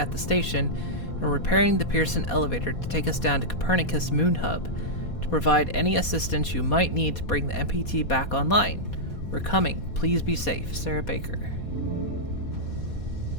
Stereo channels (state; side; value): late; right; 4.2 ms